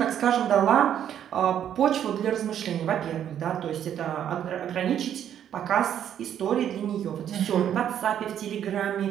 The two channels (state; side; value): quieter; left; 9.9 dB